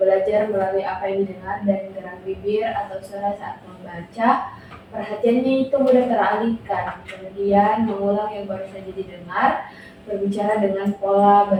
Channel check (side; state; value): both; identical; correlation 1.00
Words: melalui apa yang didengar dan gerak bibir atau suara saat membaca. Perhatiannya itu mudah teralihkan, kemudian mengulang yang baru saja didengar, berbicara dengan pola